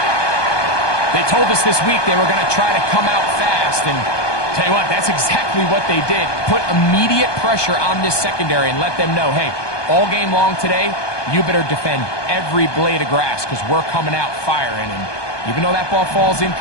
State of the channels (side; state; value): right; late; 1.2 ms